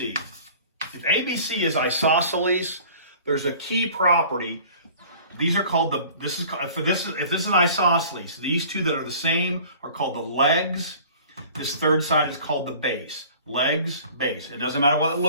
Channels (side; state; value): both; inverted; correlation -0.47